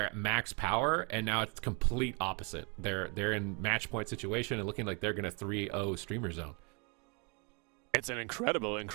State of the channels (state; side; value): quieter; left; 33.6 dB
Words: at max power, and now it's complete opposite. They're in match point situation and looking like they're going to 3-0 Streamer Zone. It's an incredible